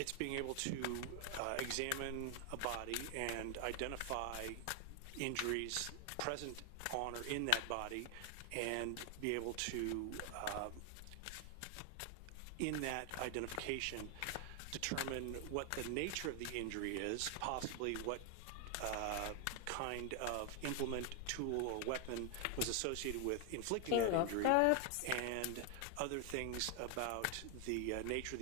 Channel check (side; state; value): both; different; correlation 0.00